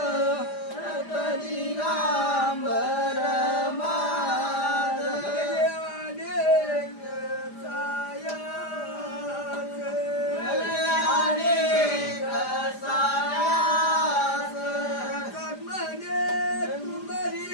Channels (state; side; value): late; right; 5.0 ms